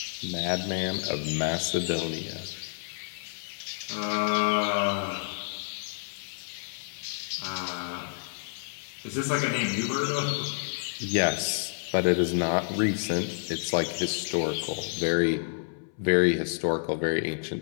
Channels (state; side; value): silent; right; 58 dB below the other